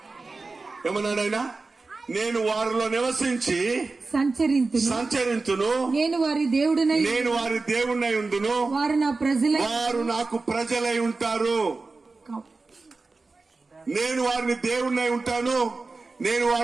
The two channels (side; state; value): left; quieter; 3.8 dB